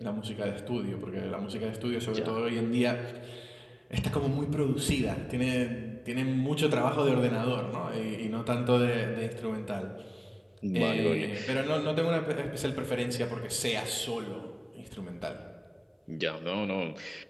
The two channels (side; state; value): both; identical; correlation 1.00